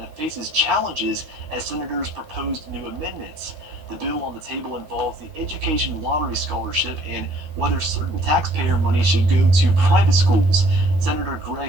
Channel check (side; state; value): left; late; 13 ms